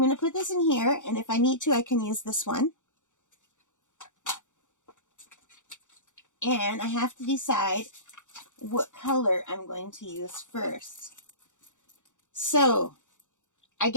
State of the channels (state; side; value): late; right; 0.86 ms